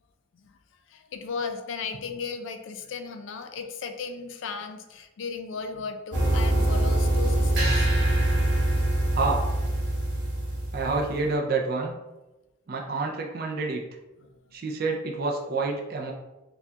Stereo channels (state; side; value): normal; both; correlation 0.65